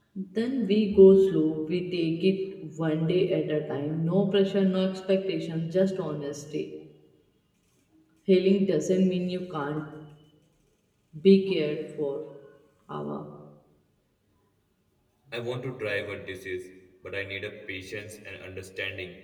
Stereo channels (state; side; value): identical; both; correlation 1.00